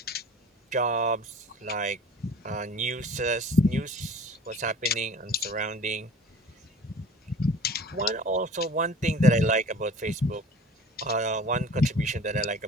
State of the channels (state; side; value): normal; both; correlation 0.44